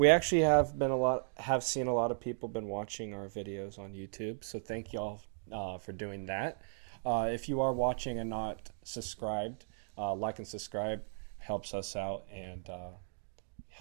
actually have seen a lot of people been watching our videos on YouTube. So thank y'all for doing that. If you are watching and not subscribed, like and subscribe helps us out and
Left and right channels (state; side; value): silent; left; digital silence